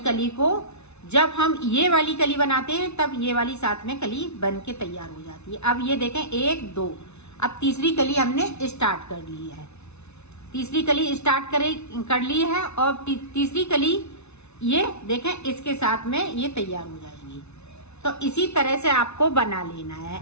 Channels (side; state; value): right; late; 0.81 ms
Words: को जब हम ये वाली कली बनाते हैं तब ये वाली साथ में कली बन के तैयार हो जाती है। अब ये देखें 1 2, अब तीसरी कली हमने स्टार्ट कर ली है। तीसरी कली स्टार्ट कर ली है और तीसरी कली ये देखें इसके साथ में ये तैयार हो जाएगी। तो इसी तरह से आपको बना लेना है।